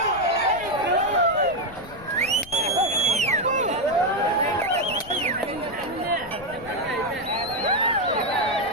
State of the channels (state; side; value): noise; left; rumble, 18 dB below the sound